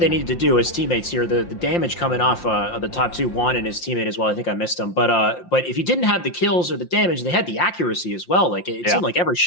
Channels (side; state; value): right; late; 5.7 ms